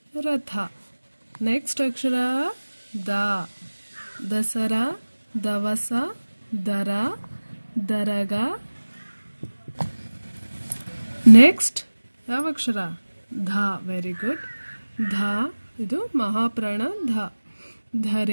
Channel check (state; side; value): inverted; both; correlation -1.00